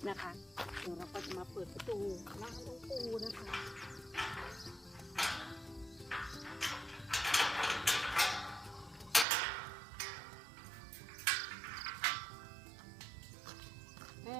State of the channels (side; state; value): left; drops out; at 9.2 s